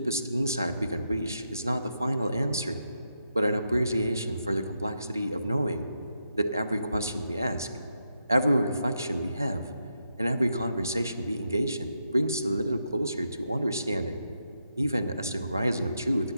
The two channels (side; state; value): both; inverted; correlation -0.83